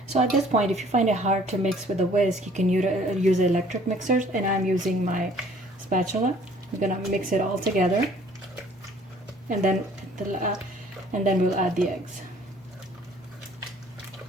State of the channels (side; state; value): both; normal; correlation 0.55